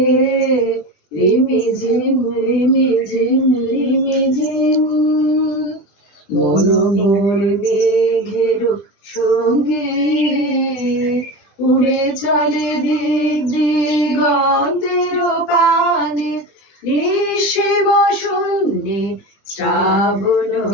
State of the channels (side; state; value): right; late; 20 ms